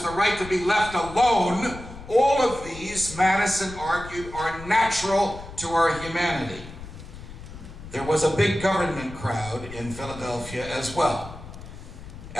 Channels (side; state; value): left; noise; rumble, 14 dB below the sound